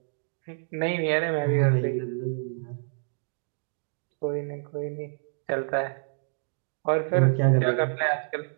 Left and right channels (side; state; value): left; silent; digital silence